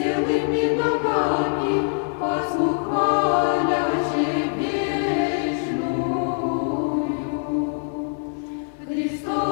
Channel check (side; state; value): right; silent; digital silence